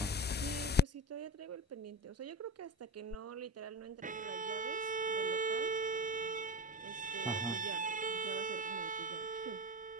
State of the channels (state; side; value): normal; both; correlation 0.24